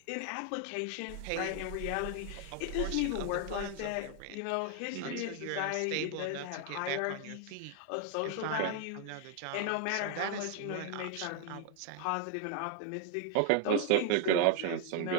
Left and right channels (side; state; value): both; different; correlation 0.00